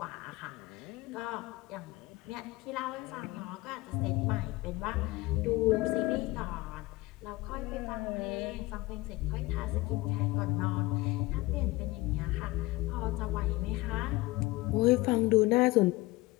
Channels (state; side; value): quieter; right; 20.4 dB